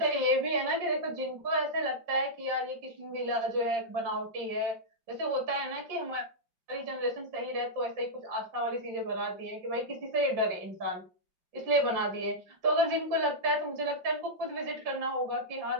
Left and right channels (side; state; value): left; late; 5.7 ms